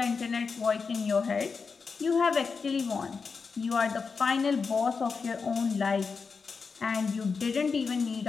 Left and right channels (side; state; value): right; quieter; 5.1 dB